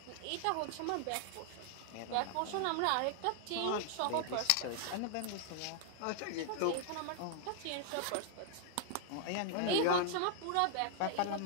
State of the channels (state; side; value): different; both; correlation -0.01